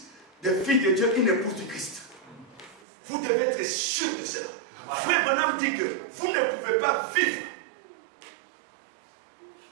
des filles de Dieu, une épouse du Christ. Vous devez être sûr de cela. Voilà. Frère Branham dit que vous ne pouvez pas vivre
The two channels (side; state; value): left; drops out; at 2.8 s